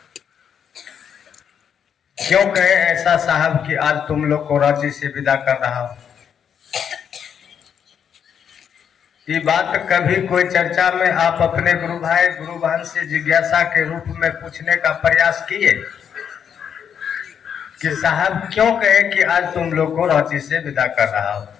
कहे ऐसा साहब कि आज तुम लोग को रांची से विदा कर रहा हूं? ये बात कभी कोई चर्चा में आप अपने गुरु भाई गुरु बहन से जिज्ञासा के रूप में पूछने का प्रयास किए कि साहब क्यों कहे कि आज तुम लोग को रांची से विदा कर रहा हूं?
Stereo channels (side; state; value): right; quieter; 8.0 dB